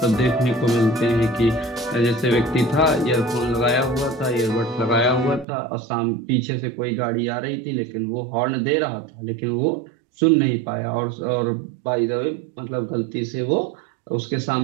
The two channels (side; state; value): left; drops out; at 5.5 s